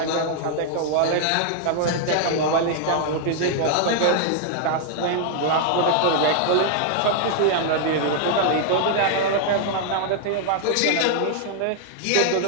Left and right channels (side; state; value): both; different; correlation -0.01